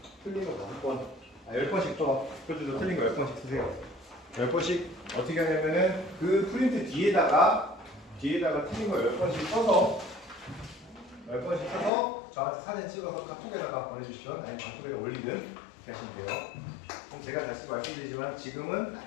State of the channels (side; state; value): right; drops out; at 11.9 s